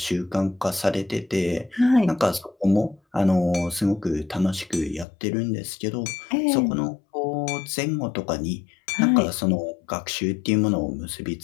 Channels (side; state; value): right; drops out; at 5.1 s